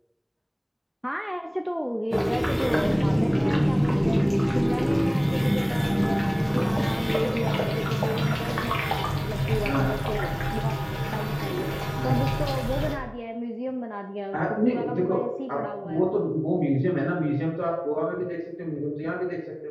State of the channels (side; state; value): both; identical; correlation 1.00